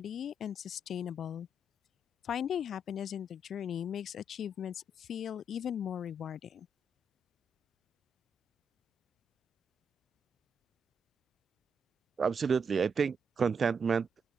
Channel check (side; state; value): both; normal; correlation 0.78